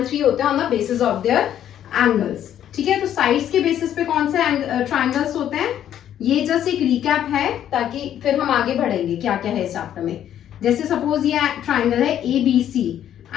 3 होते हैं on the basis of there angles. ठीक है, तो साइड्स के बेसिस पे कौन से ट्रायंगल्स होते हैं, ये जस्ट एक रिकैप है ताकि फिर हम आगे बढ़ेंगे क्या क्या है इस चैप्टर में। जैसे सपोज ये ट्रायंगल है ABC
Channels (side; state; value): right; quieter; 10.6 dB